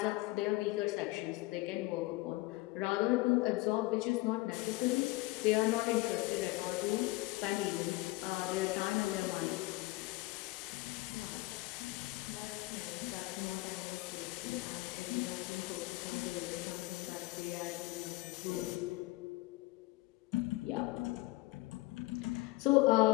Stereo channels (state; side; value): quieter; right; 20.5 dB